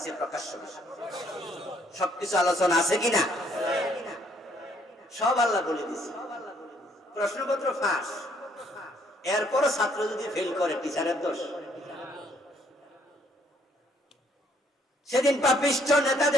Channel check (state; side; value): normal; both; correlation 0.66